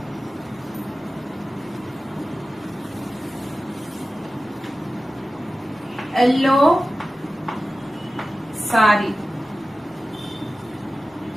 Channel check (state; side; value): normal; both; correlation 0.95